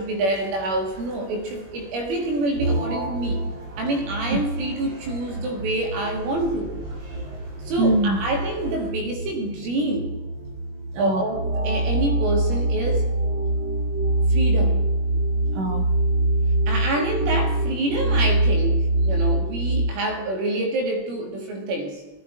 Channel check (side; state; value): left; late; 21 ms